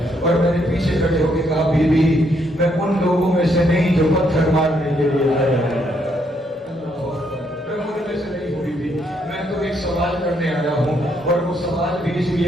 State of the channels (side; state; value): both; normal; correlation 0.73